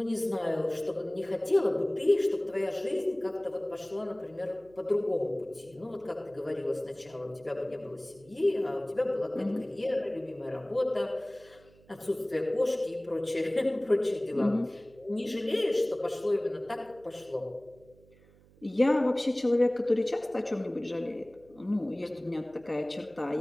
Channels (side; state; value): right; noise; hum, 27 dB below the sound